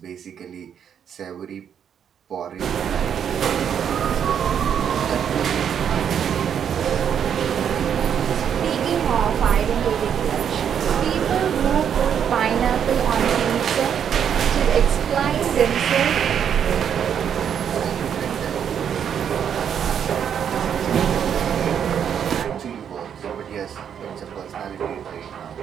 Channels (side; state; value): left; quieter; 8.4 dB